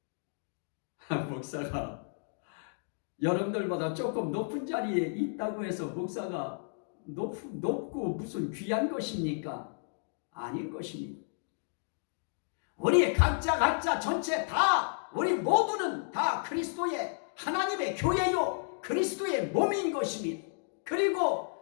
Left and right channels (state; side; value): silent; right; digital silence